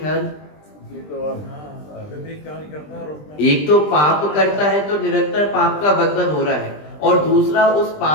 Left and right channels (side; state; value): right; late; 20 ms